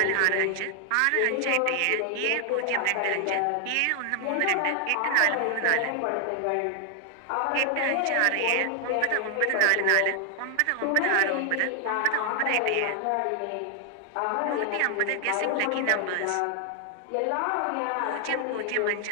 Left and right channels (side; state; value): both; different; correlation 0.00